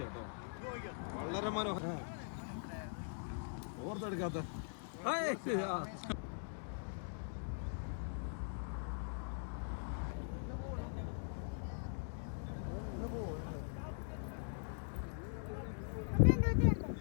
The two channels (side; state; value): right; silent; digital silence